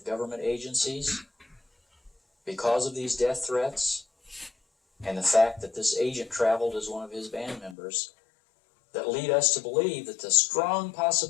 government agencies, because of these death threats, and the fact that this agent traveled as one of his band members, that lead us to believe that the strong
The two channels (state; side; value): drops out; right; at 7.8 s